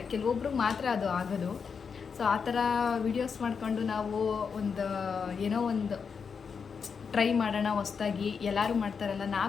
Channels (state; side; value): quieter; right; 6.0 dB